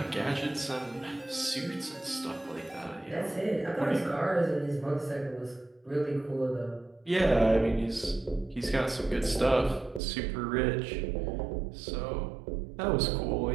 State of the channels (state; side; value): drops out; left; at 10.0 s